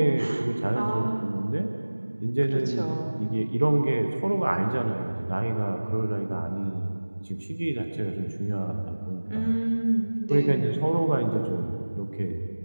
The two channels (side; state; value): both; inverted; correlation -1.00